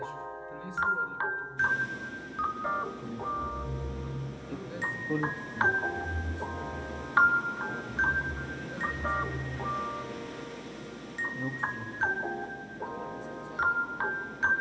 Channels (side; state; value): both; identical; correlation 1.00